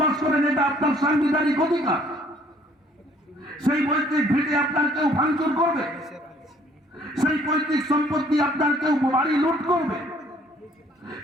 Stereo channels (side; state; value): both; normal; correlation 0.60